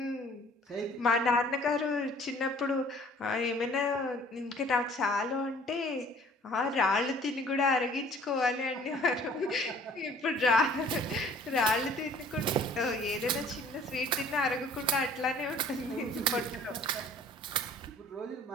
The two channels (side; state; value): both; normal; correlation 0.52